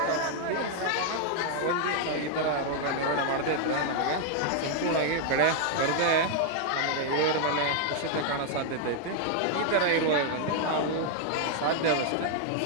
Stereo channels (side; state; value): both; different; correlation 0.00